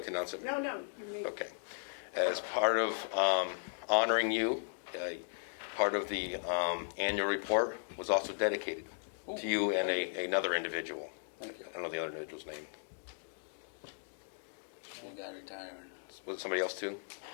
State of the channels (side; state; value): right; silent; digital silence